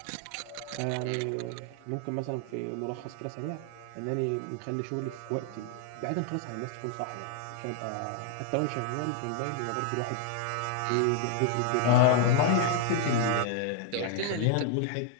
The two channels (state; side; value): different; both; correlation 0.00